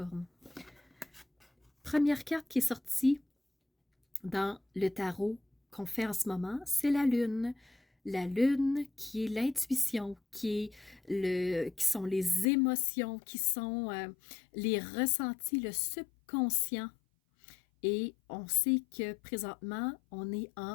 Première carte qui est sortie dans le tarot qu'on fait en ce moment, c'est la Lune. La Lune qui est l'intuition, qui sont les émotions, qui sont les ressentis, le subconscient. Et on sait que présentement, on est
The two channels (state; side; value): drops out; right; at 12.5 s